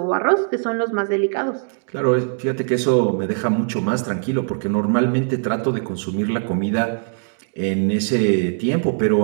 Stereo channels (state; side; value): silent; left; digital silence